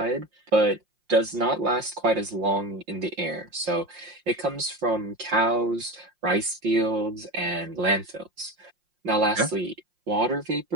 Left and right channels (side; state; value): left; late; 5.6 ms